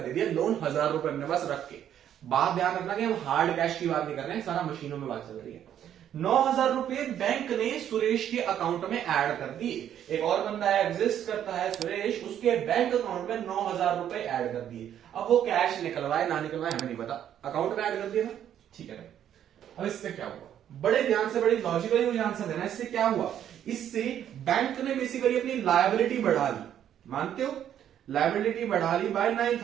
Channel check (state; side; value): quieter; left; 10.2 dB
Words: दे दिया, लोन 1,000 रुपए अपने पास रख के। बात ध्यान रखना कि हम हार्ड कैश की बात नहीं कर रहे हैं, सारा मशीनों में बात चल रही है। 9,000 रुपए बैंक ने सुरेश के अकाउंट में ऐड कर दिए। एक और बंदा एग्जिस्ट करता है सुरेश, उसके बैंक अकाउंट में 9,000 रुपए ऐड कर दिए। अब वो कैश निकलवाए ना निकलवाए हमें नहीं पता, अकाउंट में ऐड कर दिया ना, ठीक है। अब इससे क्या हुआ, बड़े ध्यान से, बड़ी लॉजिकली मुझे आंसर देना। इससे क्या हुआ, इससे बैंक ने बेसिकली अपनी लायबिलिटी बढ़ा ली, मानते हो? लायबिलिटी बढ़ा ली by